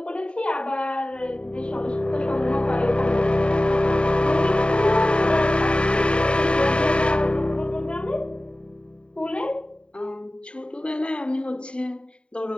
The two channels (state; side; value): late; right; 0.055 ms